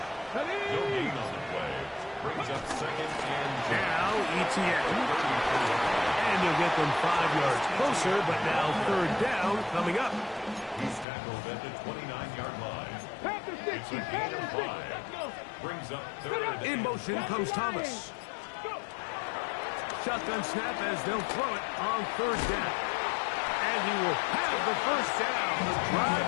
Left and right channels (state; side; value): drops out; right; at 11.1 s